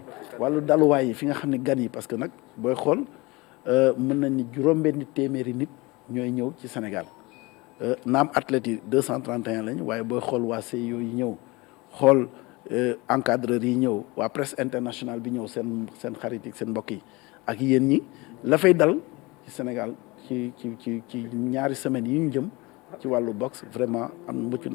wàllu daluwaay yi fi nga xam ne gan yi parce que nag booy xool mën nañ ni juróom-benni téeméeri nit ñooy ñëw ci Sénégal naam athlètes yi 231 lañ waaye booy xool waa CIO yi ñëw xool encadreurs yi ñëw waa presse internationale bi ñëw seen xarit yi seen mbokk yi ak yéen ñi la fay dal ci Sénégal ci ñaari semaines yi ñu jëm ci wàllu boxe vraiment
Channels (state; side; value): quieter; right; 24.0 dB